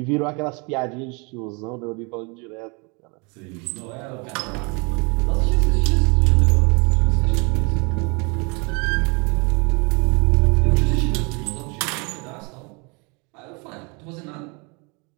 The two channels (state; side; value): quieter; left; 31.3 dB